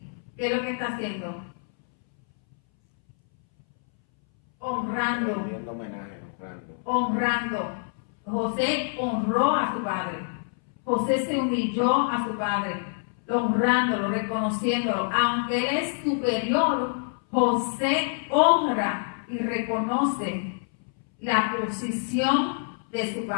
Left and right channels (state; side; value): silent; right; 61 dB below the other